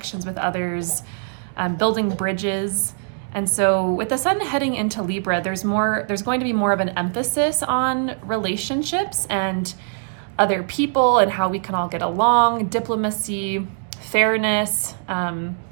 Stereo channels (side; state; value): left; silent; digital silence